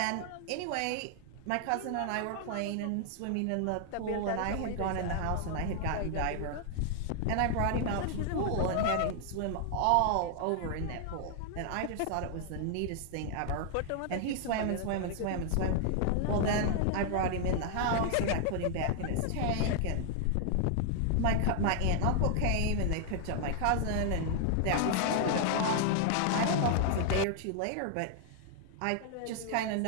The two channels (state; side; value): different; both; correlation 0.00